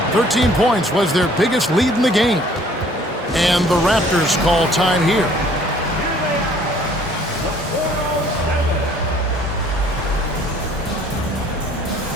13 points was their biggest lead in the game. And the Raptors call time here.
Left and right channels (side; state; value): both; normal; correlation 0.57